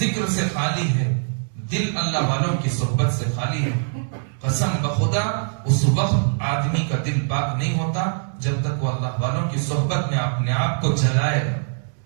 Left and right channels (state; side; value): silent; left; 64 dB below the other